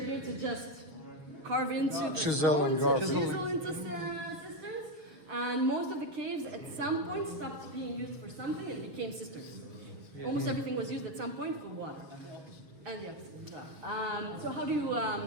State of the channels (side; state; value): left; late; 6.8 ms